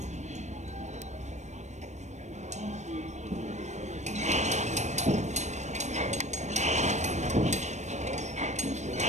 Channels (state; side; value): late; left; 0.34 ms